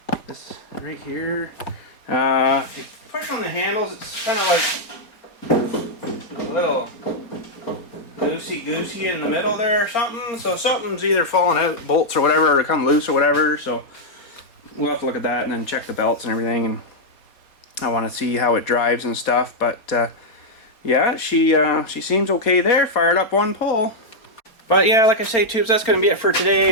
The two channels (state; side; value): late; right; 4.4 ms